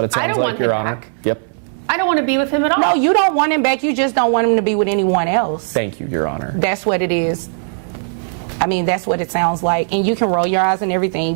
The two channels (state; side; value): silent; left; digital silence